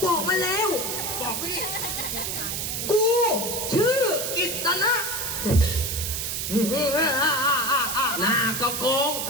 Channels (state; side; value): noise; right; hiss, 2 dB below the sound